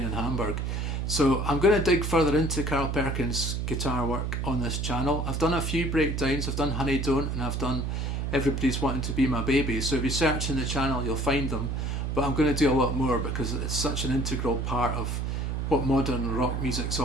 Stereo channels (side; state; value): right; noise; hum, 1 dB below the sound